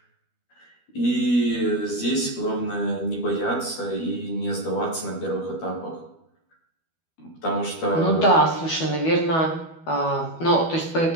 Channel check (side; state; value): right; late; 12 ms